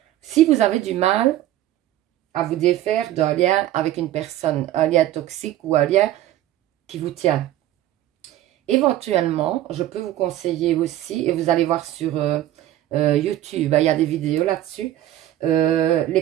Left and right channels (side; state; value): left; quieter; 13.6 dB